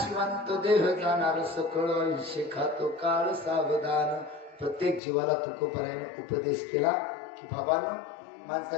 देह जाणार सकळ आयुष्य खातो काळ सावधान. प्रत्येक जीवाला तुकोबरायानं उपदेश केला की बाबांनो,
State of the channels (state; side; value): drops out; right; at 5.0 s